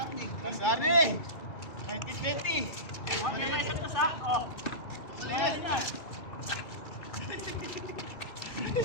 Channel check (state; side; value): late; right; 2.3 ms